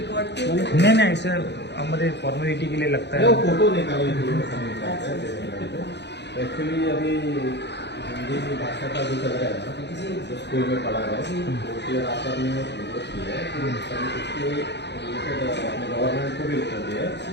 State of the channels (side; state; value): right; late; 0.50 ms